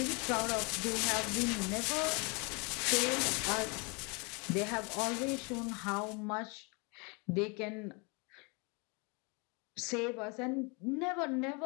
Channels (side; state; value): right; quieter; 31.1 dB